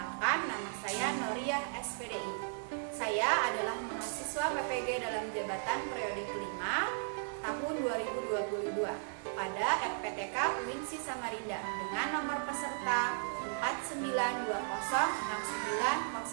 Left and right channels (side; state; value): left; silent; 54 dB below the other